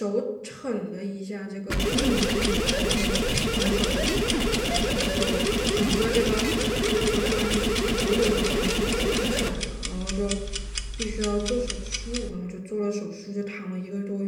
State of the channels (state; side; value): identical; both; correlation 1.00